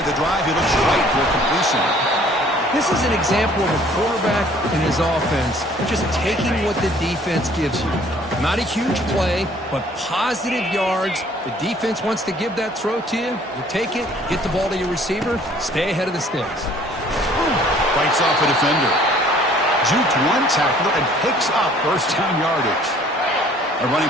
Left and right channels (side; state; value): both; normal; correlation 0.56